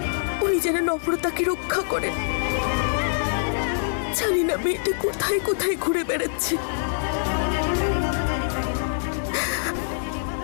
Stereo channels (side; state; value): right; silent; 62 dB below the other